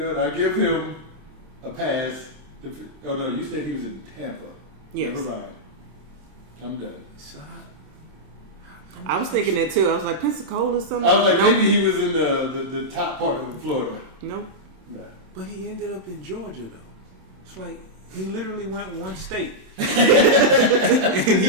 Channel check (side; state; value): left; late; 27 ms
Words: what? I give him a pass. Oh no, you said he was in Tampa. Yes. Never mind. I'm done. So I was thinking that too. I was like, Pensacola or something? I was like, Nope. maybe he was in the top part of Florida. Nope. Nah. But he ended up in Georgia, though. It's like he literally went one state, and